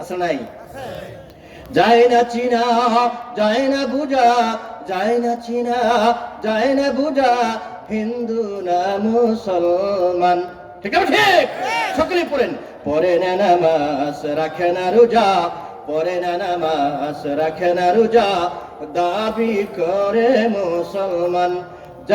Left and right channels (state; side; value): identical; both; correlation 1.00